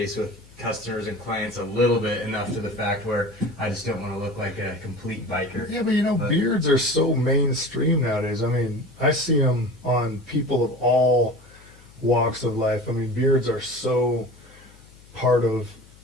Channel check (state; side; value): noise; left; hum, 24 dB below the sound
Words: with customers and clients a little bit, enough to the fact where I just don't want to look like a complete biker. Yeah, but beards are so mainstream nowadays. I mean, I see them on people of all walks of life. I mean, beards are so part of